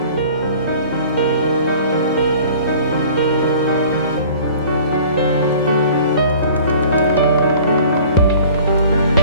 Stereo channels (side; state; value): both; inverted; correlation -0.48